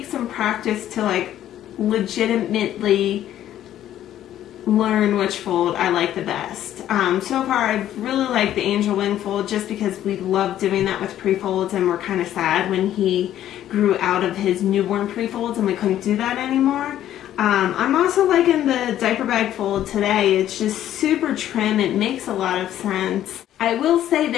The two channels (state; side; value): quieter; right; 11.9 dB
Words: some practice to like legitimately learn which fold I like the best. So far I've really liked the angel wing fold just because we love doing that with pre-folds, and we're kind of sad when he grew out of his newborn pre-folds and we couldn't do that anymore. I'm also liking the diaper bag fold today. It's just super trim. It makes a lot of sense. I will say